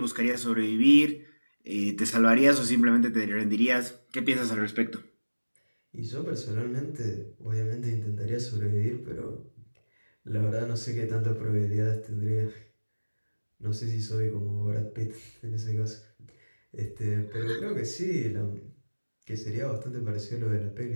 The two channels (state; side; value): inverted; both; correlation -1.00